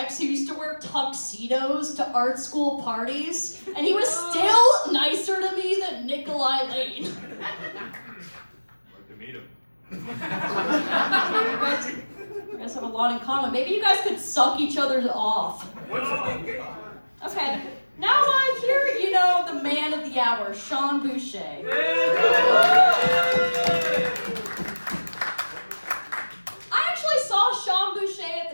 who used to wear tuxedos to art school parties, and he was still nicer to me than Nikolai Lane. Like to meet him. You guys have a lot in common. Maybe you guys could suck each other off. Okay. Now here, the man of the hour, Sean Boucher. I actually saw Sean Boucher at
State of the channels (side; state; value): both; inverted; correlation -1.00